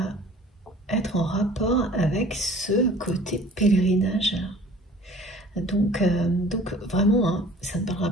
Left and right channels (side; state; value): both; normal; correlation 0.49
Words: être en rapport avec ce côté pèlerinage. Donc vraiment, hein, ça ne